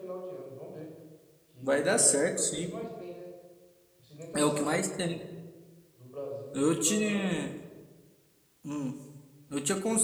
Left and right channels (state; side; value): identical; both; correlation 1.00